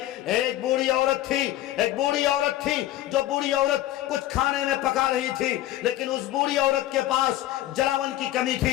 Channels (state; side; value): quieter; right; 14.4 dB